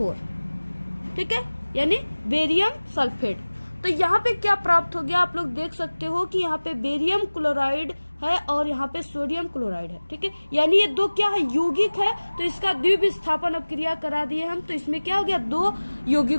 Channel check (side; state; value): both; inverted; correlation -1.00